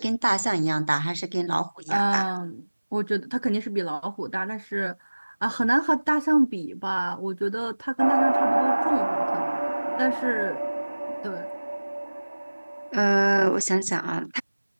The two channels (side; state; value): both; inverted; correlation -1.00